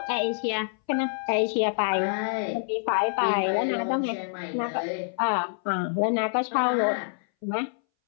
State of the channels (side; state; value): right; silent; 60 dB below the other